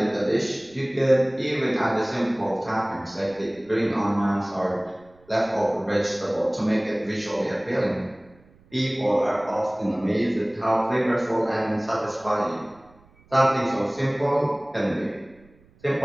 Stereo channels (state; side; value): noise; right; rumble, 29 dB below the sound